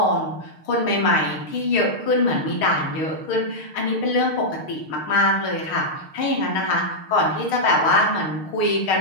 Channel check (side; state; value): right; late; 6.5 ms